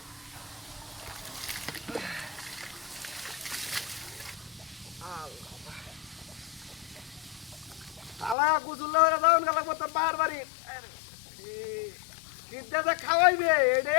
তালা কুচুল্লা হয়ে যাও গেল মতো বারবারই কিনতে যে খাওয়াইবে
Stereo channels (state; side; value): drops out; right; at 8.3 s